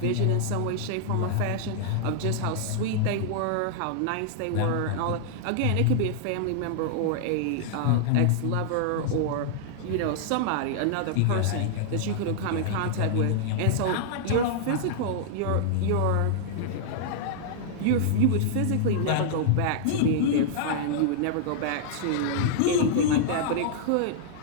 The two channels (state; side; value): different; both; correlation -0.01